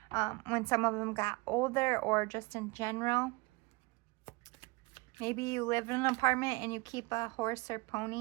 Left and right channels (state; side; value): quieter; left; 25.2 dB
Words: when some of them got older, or just in general. Maybe you live in an apartment and you keep a horse or